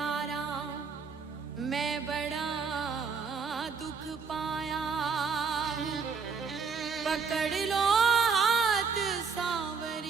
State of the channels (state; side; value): quieter; left; 5.4 dB